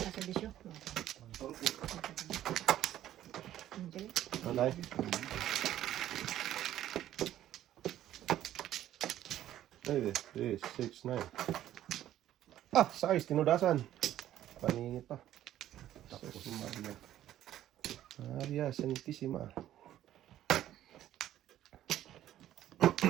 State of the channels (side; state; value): left; quieter; 12.5 dB